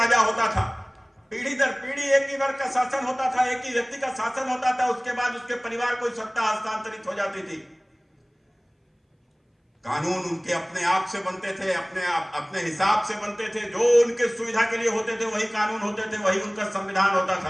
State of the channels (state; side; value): identical; both; correlation 1.00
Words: होता था, पीढ़ी दर पीढ़ी एक ही वर्ग का शासन होता था, एक ही व्यक्ति का शासन होता था, उसके बाद उसके परिवार को सत्ता हस्तांतरित हो जाती थी। कानून उनके अपने आप से बनते थे, अपने हिसाब से बनते थे, जो उनके सुविधा के लिए होते थे वही कानून होते थे, वही उनका संविधान होता